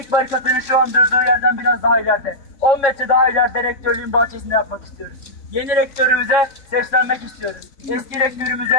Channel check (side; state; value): right; late; 3.6 ms